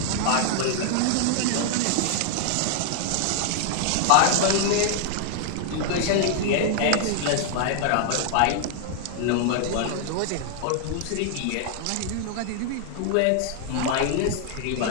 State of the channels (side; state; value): both; different; correlation 0.00